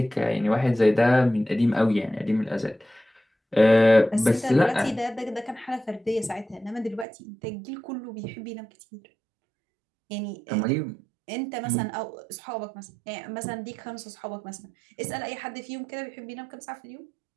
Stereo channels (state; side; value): drops out; left; at 7.1 s